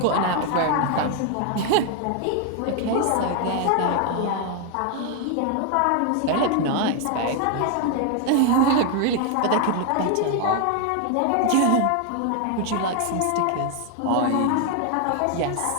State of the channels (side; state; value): both; different; correlation 0.00